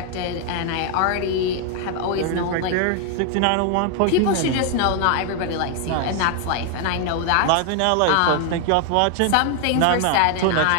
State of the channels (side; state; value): both; different; correlation 0.00